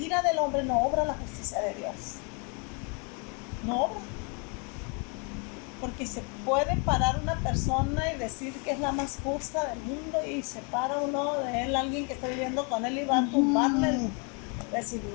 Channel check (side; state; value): right; quieter; 35.6 dB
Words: del hombre no obra la justicia de Dios. No obra. Porque se puede parar una persona y decir que es la más justa del mundo y se para uno de él, alguien que está viviendo con él y va a tumbarle. Decir,